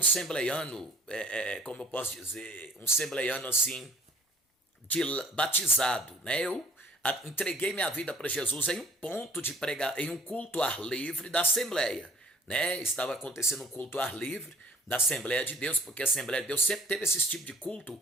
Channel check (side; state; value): both; normal; correlation 0.52